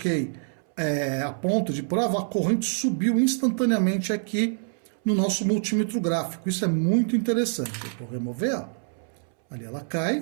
a ponta de prova, a corrente subiu instantaneamente aqui no nosso multímetro gráfico. Isso é muito interessante. Eu vou remover, ó. Ali ela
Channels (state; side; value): silent; left; 61 dB below the other